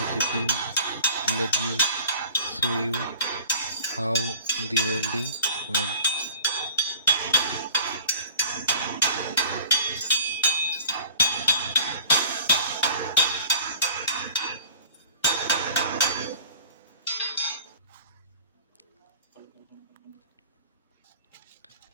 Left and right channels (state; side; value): inverted; both; correlation -0.43